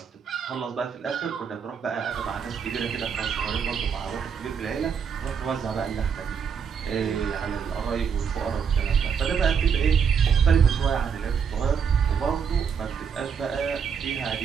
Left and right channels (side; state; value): left; quieter; 6.8 dB